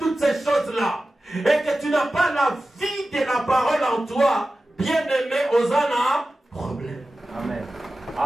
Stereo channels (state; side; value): normal; both; correlation 0.94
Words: ces choses-là, et que tu n'as pas la vie de la parole en toi, bien-aimé, vous avez un problème. Amen.